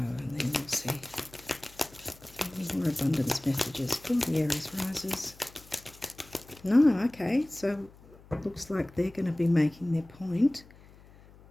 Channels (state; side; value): noise; left; hum, 23 dB below the sound